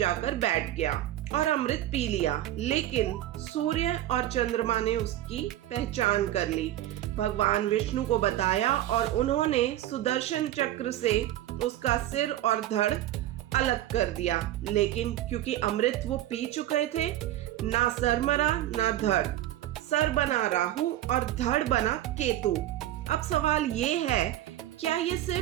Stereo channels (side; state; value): left; quieter; 13.7 dB